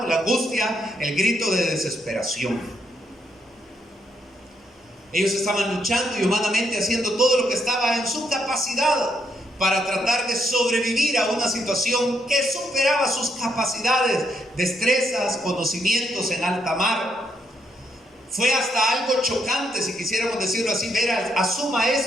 la angustia, el grito de desesperación. Ellos estaban luchando y humanamente haciendo todo lo que estaba en su capacidad para tratar de sobrevivir a una situación que superaba sus capacidades, destrezas, conocimientos en alta mar. Fue hasta algo chocante, si quisiéramos decirlo así, ver a su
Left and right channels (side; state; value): both; normal; correlation 0.76